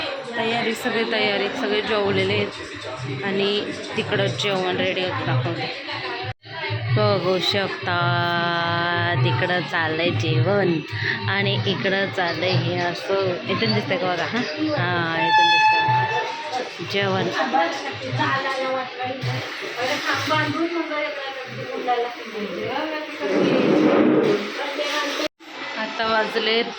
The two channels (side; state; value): both; identical; correlation 1.00